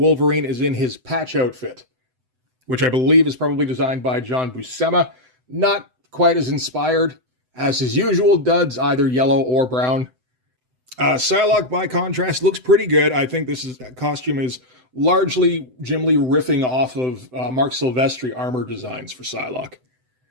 is in his patch outfit, which I believe is probably designed by John Buscema. Not quite as inspired as his usual duds, either yellow or brown. Psylocke, by contrast, looks pretty good. I think this costume is largely Jim Lee riffing off of Mark Silvestri armor designs for Psylocke.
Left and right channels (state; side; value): late; left; 7.9 ms